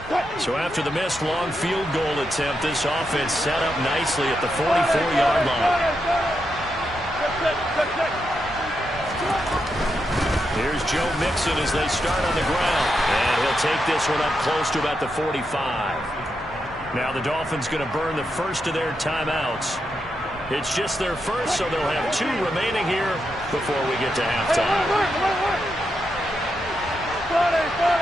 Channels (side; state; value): both; normal; correlation 0.84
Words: So after the missed long field goal attempt, this offense set up nicely at the 44-yard line. Here's Joe Mixon as they start on the ground. And he'll take this one up close to about the 45. Now the Dolphins going to burn the first of their timeouts. It's just their first, so they'll have 2 remaining here before we get to halftime.